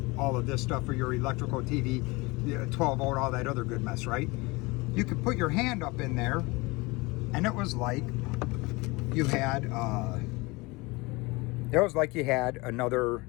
all of this stuff for your electrical TV, 12 volt, all that other good mess, right? You could put your hand up in there and it was like you had another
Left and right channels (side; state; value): right; quieter; 24.2 dB